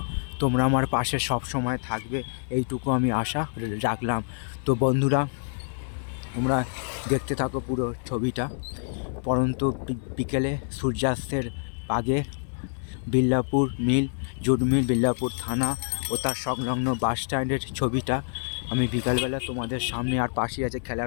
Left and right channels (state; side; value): silent; right; 57 dB below the other